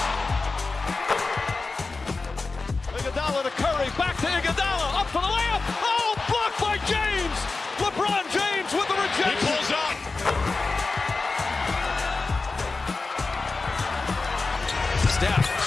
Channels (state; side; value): quieter; right; 3.8 dB